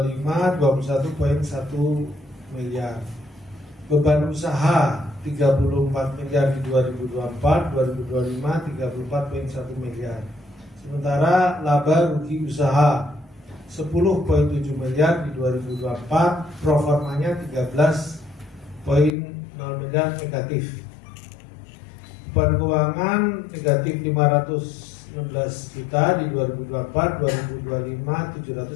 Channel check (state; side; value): drops out; right; at 19.1 s